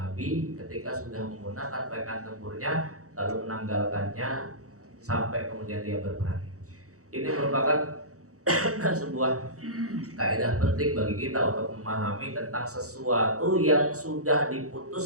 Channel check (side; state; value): left; late; 0.65 ms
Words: ketika sudah menggunakan pakaian tempurnya lalu menanggalkannya sampai kemudian dia berperang. Ini merupakan sebuah kaidah penting bagi kita untuk memahami tentang sesuatu yang sudah